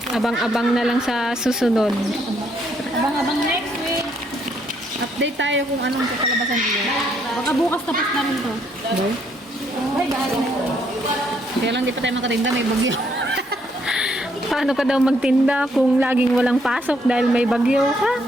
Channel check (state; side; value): normal; both; correlation 0.71